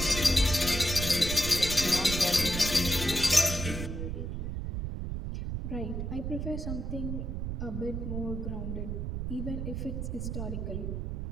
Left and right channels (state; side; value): noise; right; rumble, 3 dB below the sound